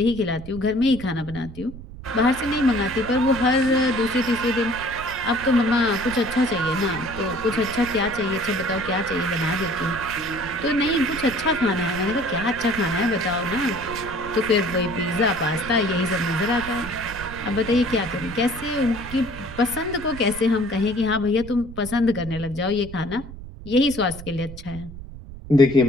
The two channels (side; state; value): right; noise; rumble, 13 dB below the sound